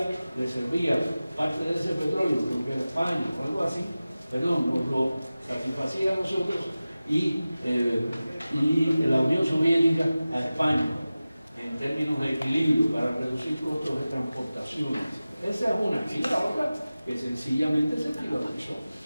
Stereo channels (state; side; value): inverted; both; correlation -0.96